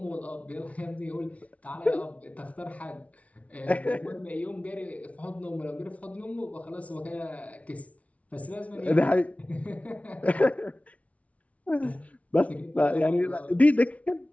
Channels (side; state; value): right; late; 0.066 ms